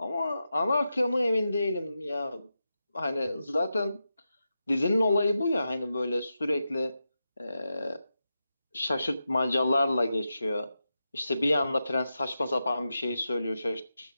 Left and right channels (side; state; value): both; inverted; correlation -0.89